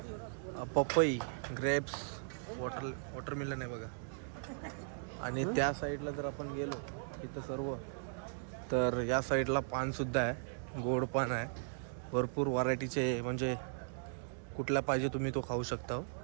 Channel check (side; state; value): left; silent; digital silence